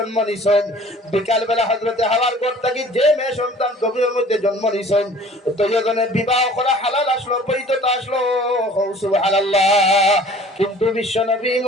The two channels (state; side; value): normal; both; correlation 0.49